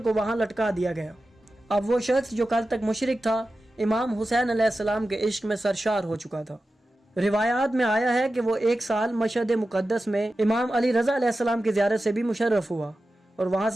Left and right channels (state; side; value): normal; both; correlation 0.93